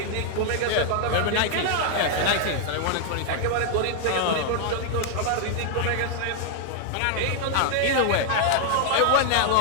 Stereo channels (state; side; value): different; both; correlation 0.00